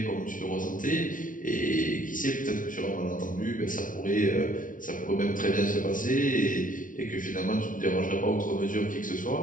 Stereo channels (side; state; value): right; late; 0.38 ms